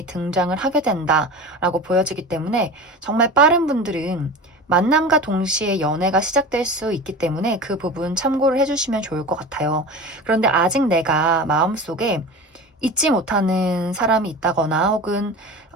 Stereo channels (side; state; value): both; normal; correlation 0.32